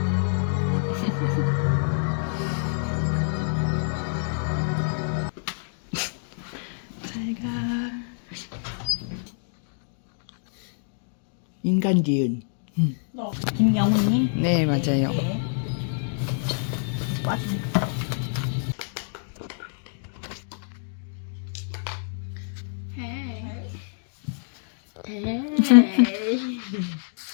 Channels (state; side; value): silent; right; digital silence